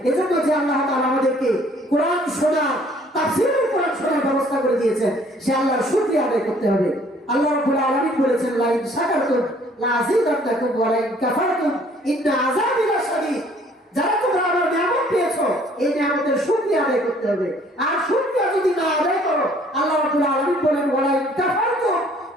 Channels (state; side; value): normal; both; correlation 0.58